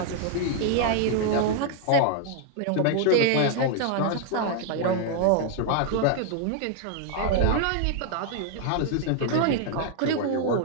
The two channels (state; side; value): different; both; correlation 0.00